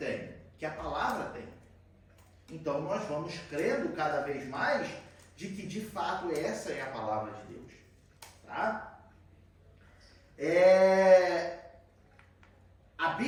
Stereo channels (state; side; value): identical; both; correlation 1.00